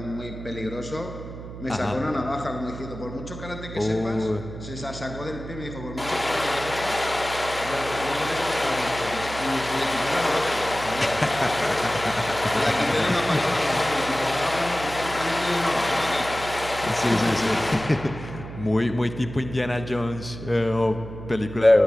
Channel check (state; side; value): noise; right; hum, 11 dB below the sound